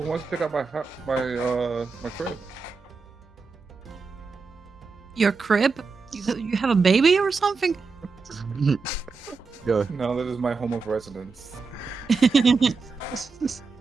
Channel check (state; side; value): quieter; left; 4.6 dB